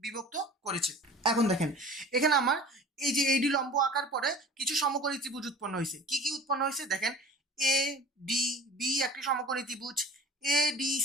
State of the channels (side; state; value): both; normal; correlation 0.42